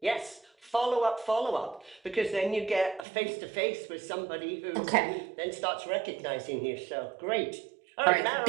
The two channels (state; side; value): drops out; left; at 3.1 s